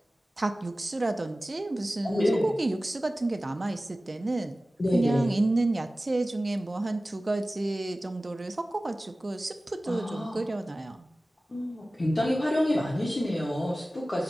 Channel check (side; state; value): both; normal; correlation 0.97